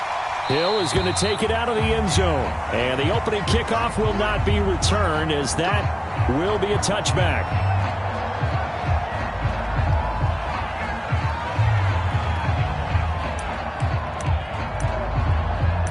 Hill is going to take it out of the end zone. And the opening kickoff will not be returned, as that will be a touchback.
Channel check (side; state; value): both; identical; correlation 1.00